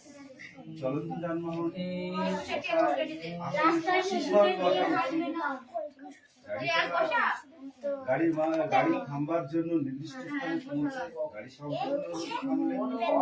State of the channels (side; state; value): both; identical; correlation 1.00